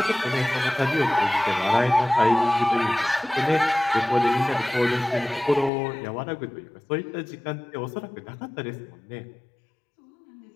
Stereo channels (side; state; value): right; drops out; at 5.7 s